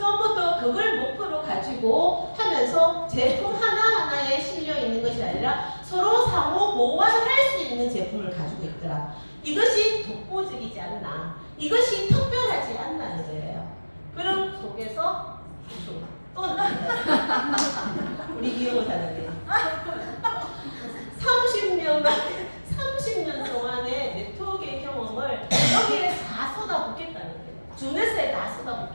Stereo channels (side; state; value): both; inverted; correlation -1.00